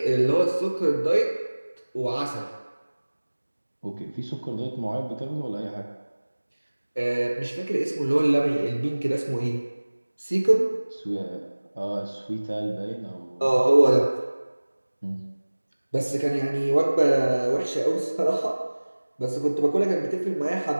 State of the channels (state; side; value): inverted; both; correlation -1.00